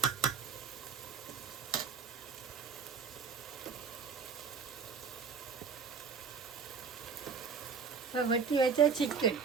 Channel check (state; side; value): quieter; left; 5.9 dB